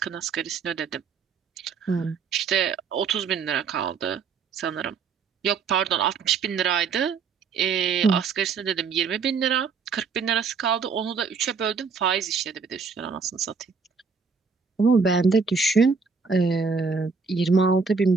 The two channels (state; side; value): quieter; left; 5.2 dB